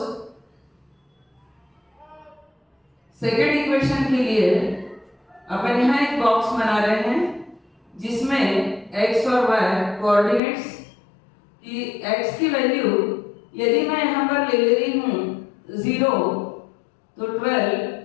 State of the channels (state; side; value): drops out; right; at 10.4 s